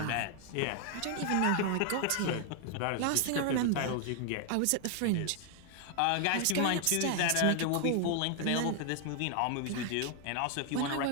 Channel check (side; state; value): both; different; correlation 0.00